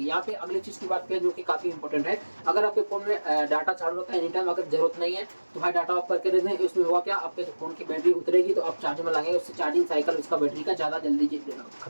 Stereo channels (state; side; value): inverted; both; correlation -1.00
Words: यहाँ पे अगली चीज की बात करें जो कि काफी इंपॉर्टेंट है, अगर आपके फोन में डाटा चालू होता है एनी टाइम, अगर जरूरत नहीं है तो भाई डाटा ऑफ करके रख दें। उसमें हुआ क्या, आपके फोन की बैटरी उतरेगी तो आप चार्जिंग में लगाएंगे, उससे चार्जिंग साइकिल उसका बैटरी का ज्यादा जल्दी